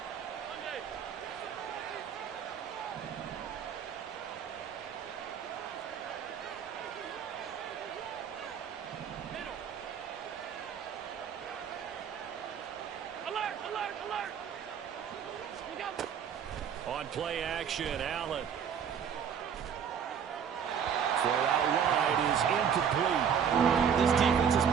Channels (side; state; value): left; quieter; 7.7 dB